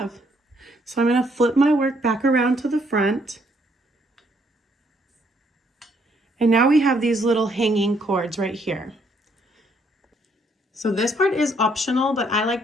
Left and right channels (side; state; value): both; normal; correlation 0.69